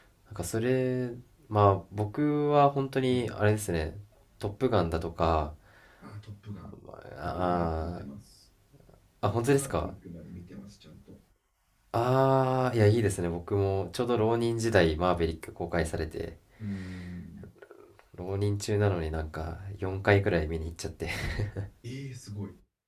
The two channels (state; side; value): identical; both; correlation 1.00